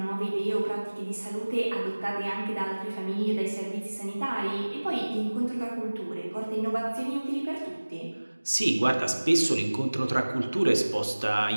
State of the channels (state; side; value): inverted; both; correlation -1.00